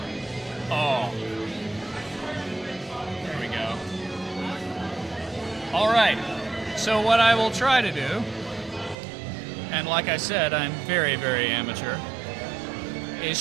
Oh. There we go. All right, so what I will try to do, and like I said, I'm very, very amateur, is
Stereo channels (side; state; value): left; drops out; at 9.0 s